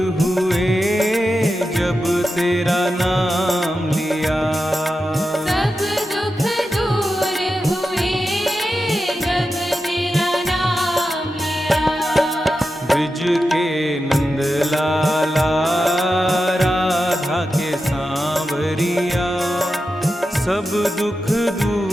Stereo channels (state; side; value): normal; both; correlation 0.90